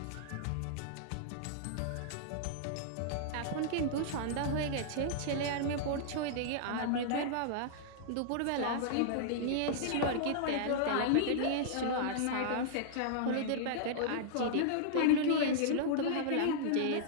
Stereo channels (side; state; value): both; different; correlation -0.02